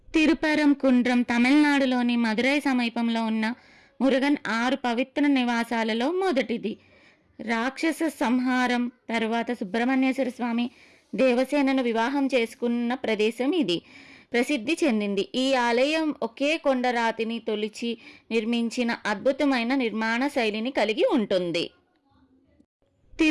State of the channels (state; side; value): identical; both; correlation 1.00